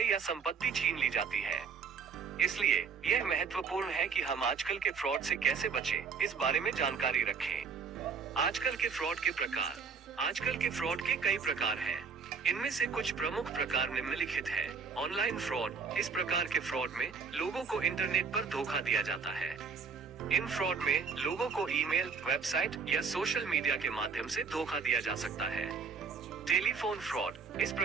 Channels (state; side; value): quieter; left; 5.5 dB